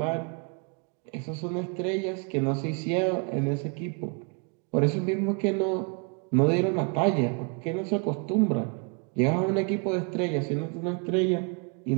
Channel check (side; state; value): left; quieter; 35.0 dB